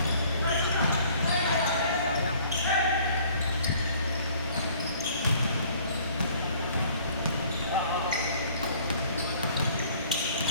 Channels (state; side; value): inverted; both; correlation -0.55